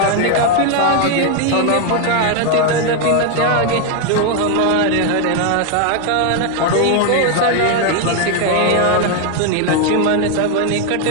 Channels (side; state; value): both; different; correlation 0.01